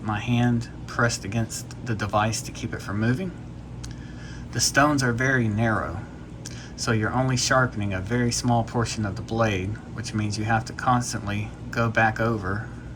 my hand pressed against the device to keep it from moving. The stones are very narrow, so you're only sharpening a very small portion of the blade, which means you have to constantly go back over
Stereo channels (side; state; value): both; identical; correlation 1.00